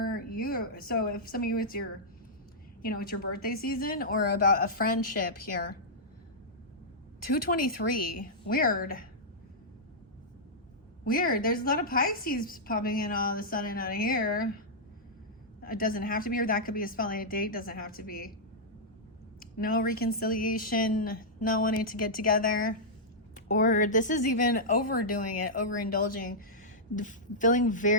So if some of you, it's your, it's your birthday season or about a friendship here. 223, weird. There's a lot of Pisces popping in all of a sudden out of here. It doesn't have to be, or that could be a spotlight date. Doesn't have to be. No reconciliation, not wanting to get together. Or this is even overdoing it, overindulging, feeling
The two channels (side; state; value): both; normal; correlation -0.10